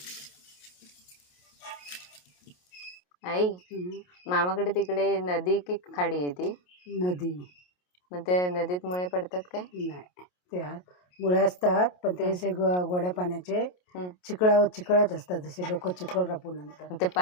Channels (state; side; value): late; right; 28 ms